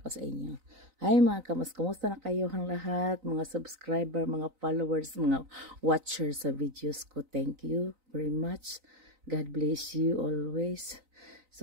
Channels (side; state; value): left; late; 3.9 ms